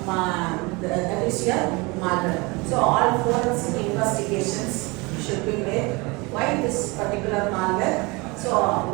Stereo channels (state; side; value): quieter; left; 26.0 dB